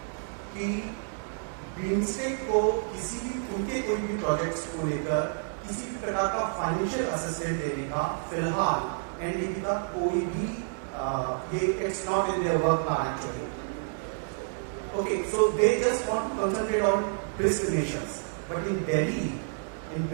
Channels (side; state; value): left; silent; digital silence